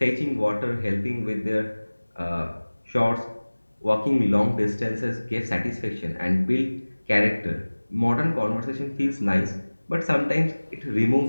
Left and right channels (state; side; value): inverted; both; correlation -1.00